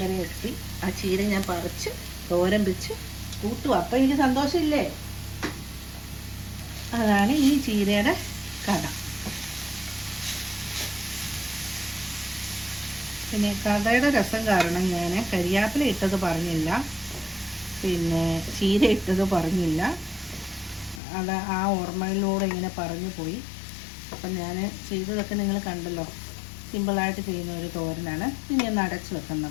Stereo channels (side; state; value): right; drops out; at 21.0 s